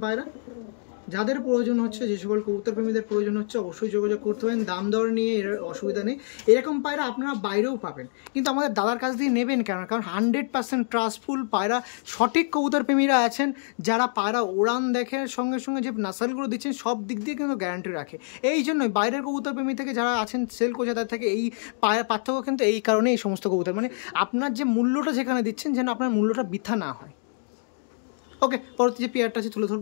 পায়রা। যাদের প্রয়োজন হচ্ছে, যে সকল কবুতর প্রেমীদের প্রয়োজন হচ্ছে, অবশ্যই যোগাযোগ করতে পারেন। দাম দর নিয়ে এর অসুবিধা নেই। এরকম পায়রা আপনারা বাইরেও পাবেন, কিন্তু আমাদের দাদার কাছ দিয়ে নেবেন কেন? কারণ 100% ট্রাস্টফুল পায়রা, সঠিক কবুতর প্রেমীরা আছেন যারা পায়রা ওড়ান দেখে, সঙ্গে সঙ্গে যে নাসালগুলো দিচ্ছেন সব দিক দিয়ে কিন্তু গ্যারান্টি রাখে। এই জন্যই বাইরের কবুতর প্রেমী থেকে যারা আছেন সেল করছে তাদের থেকে এই পায়রা পার্থক্য কিন্তু এই কারণে। এই সমস্ত কবুতর মানে আপনার যে মূল্যটা যেখানে দিচ্ছেন, যেন আপনার মূল্যটা বৃথা না হয়। ওকে পরবর্তী যে পেয়ারটা আছে তুলে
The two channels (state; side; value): silent; right; digital silence